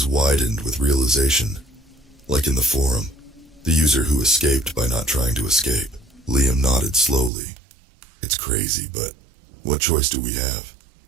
widened with realization. Like in the forum, the user who escaped by not trying to escape. Liam nodded slowly. It's crazy, but what choice do we have?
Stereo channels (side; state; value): left; drops out; at 7.3 s